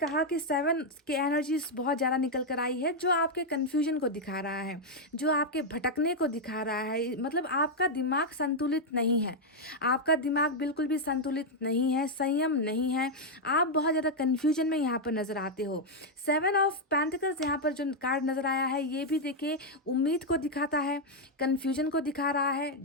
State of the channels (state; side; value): normal; both; correlation -0.01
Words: कि 7 की एनर्जी बहुत ज़्यादा निकल कर आई है, जो आपके कन्फ्यूजन को दिखा रहा है, जो आपके भटकने को दिखा रहा है। मतलब आपका दिमाग संतुलित नहीं है, आपका दिमाग बिल्कुल भी संतुलित नहीं है, संयम नहीं है, आप बहुत ज़्यादा कन्फ्यूजन में यहाँ पर नज़र आते हो। 7 ऑफ पेंटिकल्स यहाँ पर जो कार्ड नज़र आया है, ये भी देखिए उम्मीद को दिखाता है, कन्फ्यूजन को दिखा रहा है,